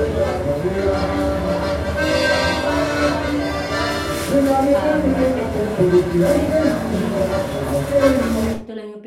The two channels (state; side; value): identical; both; correlation 1.00